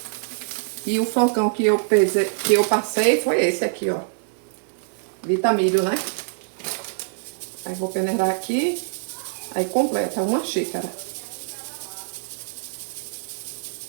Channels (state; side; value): silent; left; 58 dB below the other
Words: E o flocão que eu passei foi esse aqui, ó. Vitamilho, né? Aí vou peneirar aqui. Aí completa uma xícara.